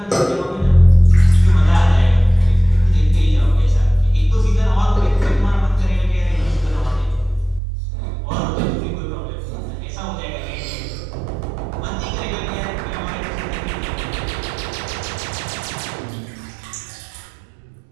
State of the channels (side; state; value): left; drops out; at 7.6 s